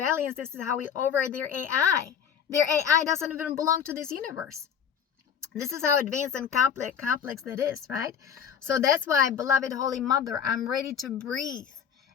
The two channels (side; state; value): right; quieter; 7.8 dB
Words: This is how we override their AI. Their AI doesn't even belong to this universe. This is how advanced and complex that is, right? So that's why, beloved Holy Mother, I'm ready to breathe